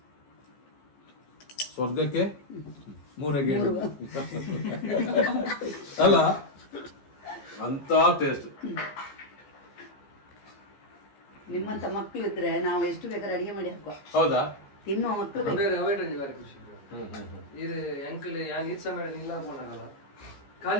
ಸ್ವರ್ಗಕ್ಕೆ 3 ಗೇಣು ಅಲ್ಲ ಅಂತ ಟೇಸ್ಟ್ ನಿಮ್ಮಂತ ಮಕ್ಕಳು ಇದ್ರೆ ನಾವು ಎಷ್ಟು ಬೇಕಾದ್ರೆ ಅಡಿಗೆ ಮಾಡಿ ಹಾಕುವ ಹೌದಾ ತಿನ್ನುವ ಮಕ್ಕಳು ಇದು ಅಂಕಲ್ ಯಾನ್ ಈದ್ ಸಮಯ ಇಲ್ಲ ಅನ್ಕೊಂಡಾಗಲ್ಲ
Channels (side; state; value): right; late; 15 ms